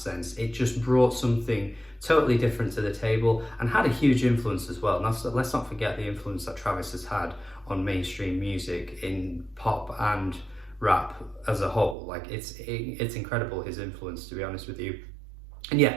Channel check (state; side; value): drops out; left; at 12.0 s